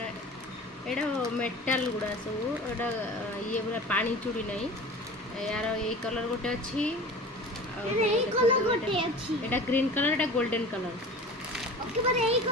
एटा मेटाल गुड़ा सब एटा ये पूरा पानी चूड़ी नहीं यार ये कलर गोटे अच्छी एटा ग्रीन कलर एटा गोल्डन कलर ओके पर एई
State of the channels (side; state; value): both; normal; correlation 0.38